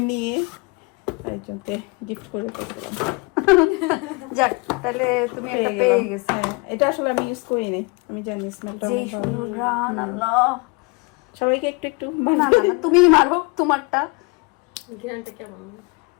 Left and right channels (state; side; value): quieter; right; 28.9 dB